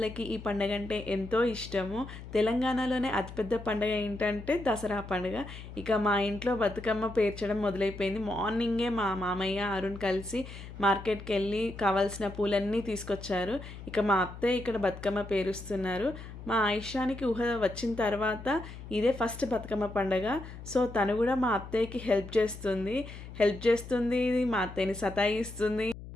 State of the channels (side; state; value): left; noise; hum, 13 dB below the sound